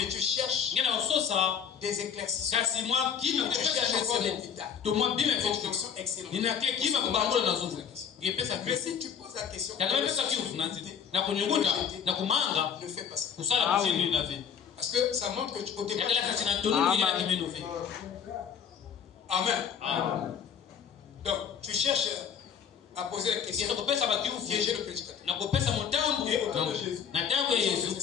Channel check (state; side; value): quieter; right; 7.5 dB